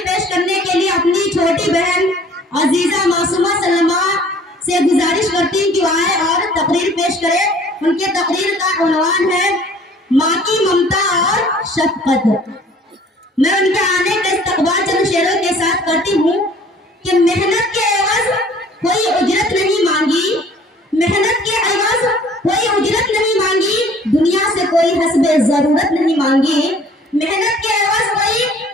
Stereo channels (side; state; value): both; normal; correlation 0.53